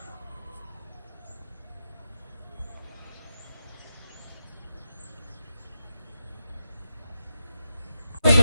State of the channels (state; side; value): inverted; both; correlation -0.87